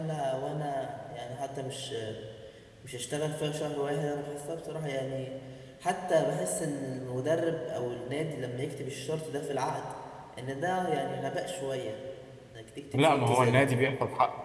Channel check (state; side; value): identical; both; correlation 1.00